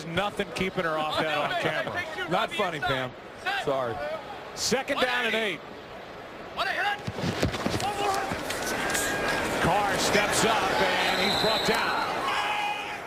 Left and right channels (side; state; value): both; identical; correlation 1.00